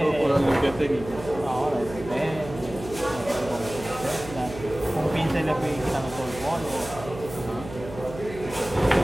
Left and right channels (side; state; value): right; noise; hum, 13 dB below the sound